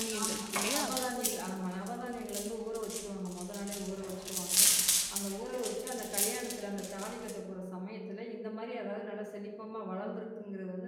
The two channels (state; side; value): identical; both; correlation 1.00